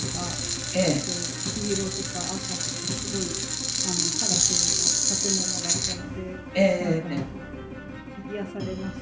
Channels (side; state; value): both; identical; correlation 1.00